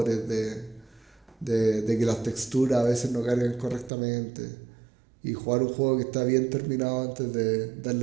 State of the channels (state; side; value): drops out; left; at 3.9 s